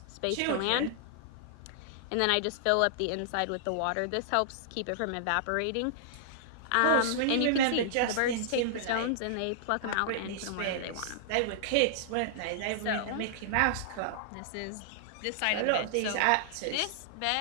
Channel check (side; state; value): both; different; correlation -0.01